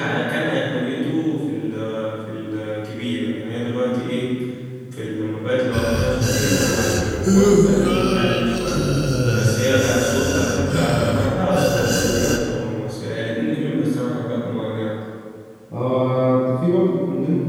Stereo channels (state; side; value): identical; both; correlation 1.00